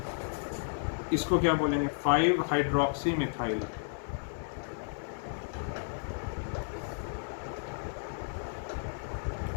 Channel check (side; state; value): right; silent; digital silence